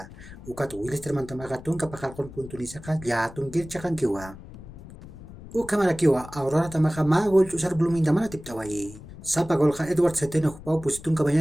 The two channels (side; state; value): left; noise; rumble, 16 dB below the sound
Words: Uka tu wilis terman tamam khatung ka pakalkon punto ni sakhat ya tungkir chakan kiwa. Uka marakiwa Aurora tamam ka magol chusar blumin tamam tip tawai. Sapa gol ka Edward Seteno pau pusitung